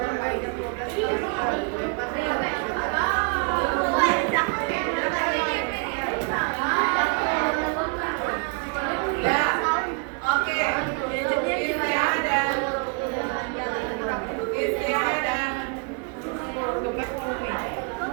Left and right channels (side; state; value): left; quieter; 34.7 dB